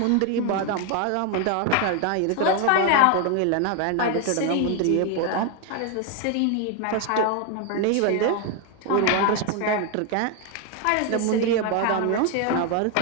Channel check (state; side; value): different; both; correlation 0.01